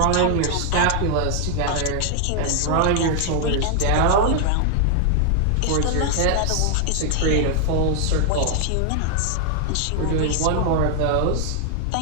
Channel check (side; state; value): both; different; correlation 0.00